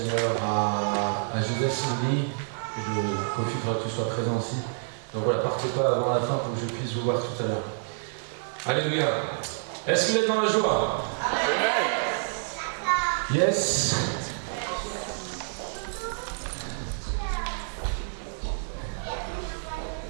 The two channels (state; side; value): silent; left; digital silence